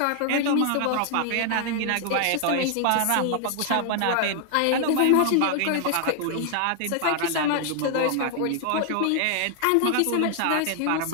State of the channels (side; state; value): both; different; correlation 0.00